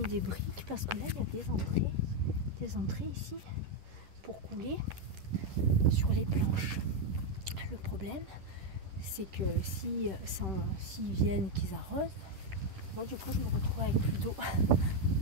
des briques parce que là, il y a des entrées ici pour couler sur les planches. Le problème, c'est que s'ils viennent, qu'ils arrosent, moi du coup je me retrouve avec plus d'eau.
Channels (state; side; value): late; left; 10 ms